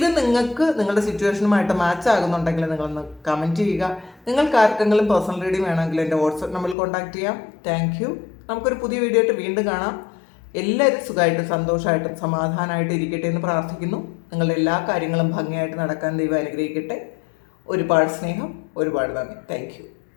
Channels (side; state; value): right; drops out; at 6.8 s